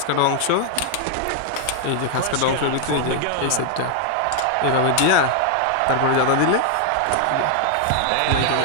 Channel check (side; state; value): both; different; correlation 0.00